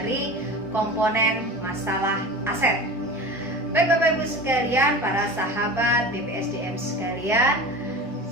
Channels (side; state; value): both; normal; correlation 0.33